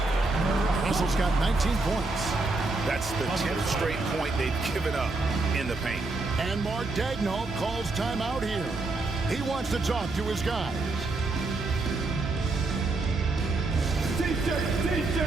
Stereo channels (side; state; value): left; quieter; 3.3 dB